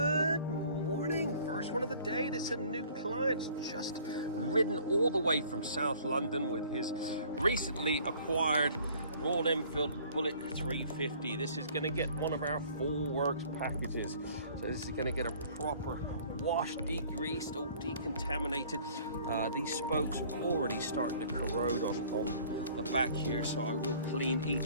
morning, first one of the day. This is a new client, just ridden all the way from South London with his recently acquired Royal Enfield Bullet 350. This is going to get one of our full works packages. So this is going to get a proper wash, degreased, all decontaminated. These spokes are already starting to corrode on the back here, so I will clean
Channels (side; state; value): both; inverted; correlation -0.53